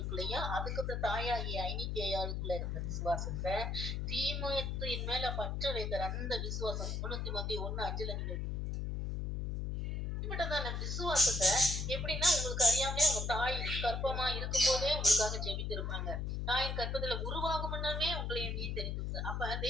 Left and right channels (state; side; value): noise; left; hum, 2 dB below the sound